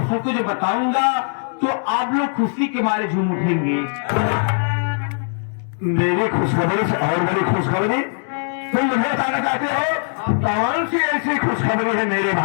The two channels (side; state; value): right; silent; digital silence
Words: सबको जो बताऊंगा तो आप लोग खुशी के मारे झूम उठेंगे। मेरी खुशखबरी से और बड़ी खुशखबरी तुम मुझे बताना चाहते हो? कौन सी ऐसी खुशखबरी है मेरे